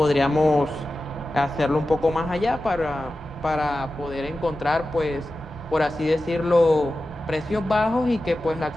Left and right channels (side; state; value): both; normal; correlation 0.94